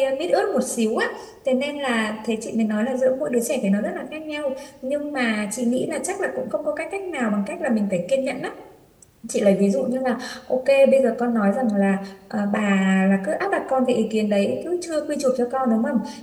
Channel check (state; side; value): identical; both; correlation 1.00